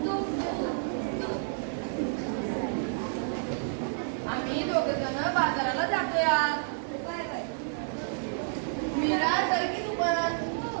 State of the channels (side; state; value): left; silent; 58 dB below the other